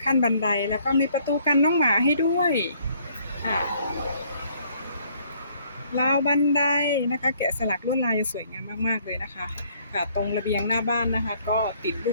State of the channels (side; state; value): both; inverted; correlation -0.63